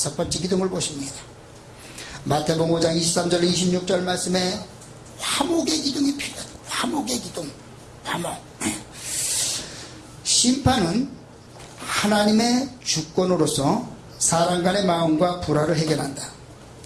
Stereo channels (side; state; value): both; identical; correlation 1.00